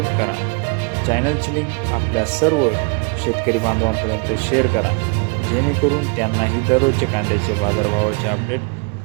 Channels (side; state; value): left; quieter; 31.0 dB